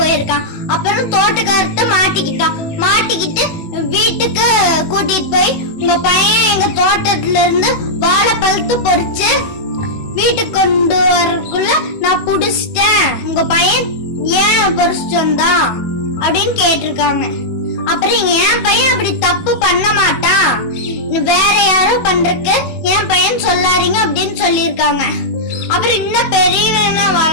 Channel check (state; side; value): late; right; 18 ms